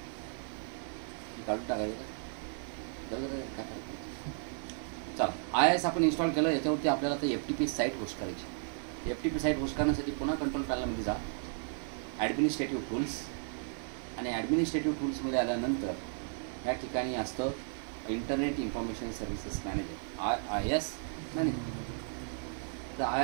काढून टाकायचं का? चला, IIS आपण इन्स्टॉल केलं. याच्यावरती आपल्याला आता FTP साईट होस्ट करायची. FTP साईट होस्ट करण्यासाठी पुन्हा कंट्रोल पॅनलमध्ये जा, ॲडमिनिस्ट्रेटिव्ह टूल्स. आणि ॲडमिनिस्ट्रेटिव्ह टूल्समध्ये आल्यानंतर या ठिकाणी असतं internet information services manager, IIS manager. तर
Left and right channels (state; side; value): silent; left; 55 dB below the other